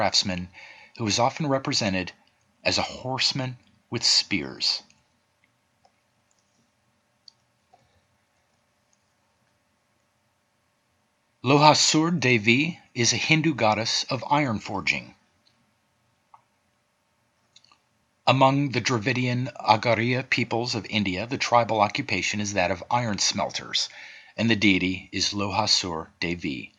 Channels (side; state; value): both; identical; correlation 1.00